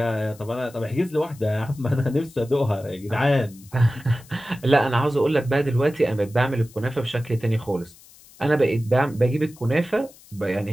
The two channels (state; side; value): noise; left; hiss, 24 dB below the sound